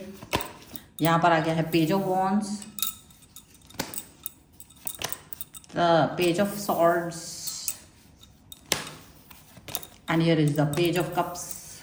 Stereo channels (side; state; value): both; identical; correlation 1.00